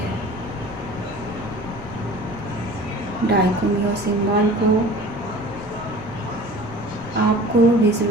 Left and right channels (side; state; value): right; noise; rumble, 22 dB below the sound